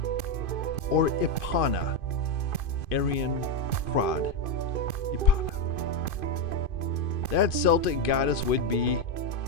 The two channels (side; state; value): right; late; 2.5 ms